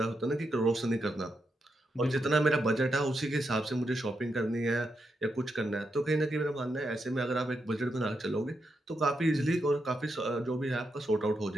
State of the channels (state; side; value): normal; both; correlation 0.84